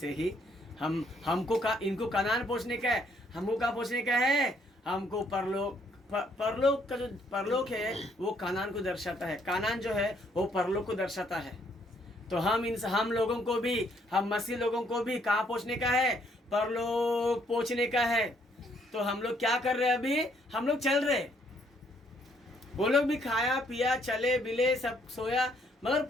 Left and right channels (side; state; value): both; normal; correlation 0.68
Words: ही इनको कनान पहुंचने का है। हमको कहाँ पहुंचने का है? हमको परलोक का जो परलोक है वो कानान को दर्शाता है। कानान जो है वो परलोक को दर्शाता है। तो हम लोगों को भी, हम मसीह लोगों को भी कहाँ पहुंचने का है? परलोक पहुंचने का है। तो हम लोग क्या कर रहे हैं? अभी हम लोग चल रहे। वो लोग भी खाया पिया, चले बिले, सब सोया, मगर